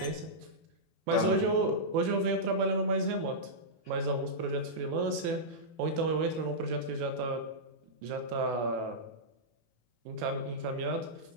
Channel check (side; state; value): left; late; 18 ms